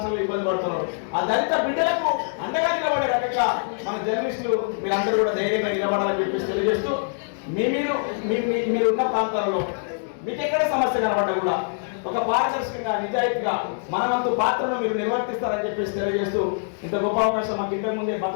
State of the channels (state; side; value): silent; right; digital silence